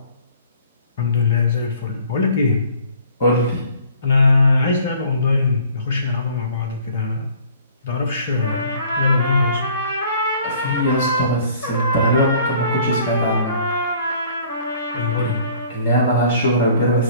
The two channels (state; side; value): inverted; both; correlation -0.54